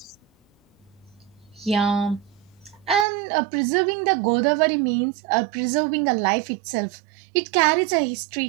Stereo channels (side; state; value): left; drops out; at 3.1 s